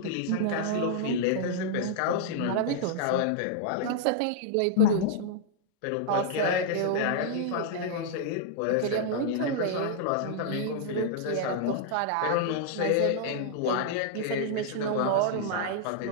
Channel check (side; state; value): both; different; correlation -0.01